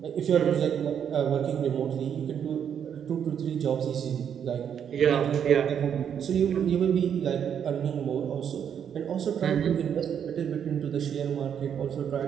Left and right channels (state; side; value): quieter; left; 8.4 dB